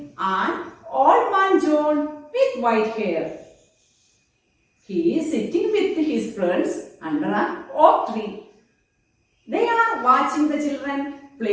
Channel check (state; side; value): identical; both; correlation 1.00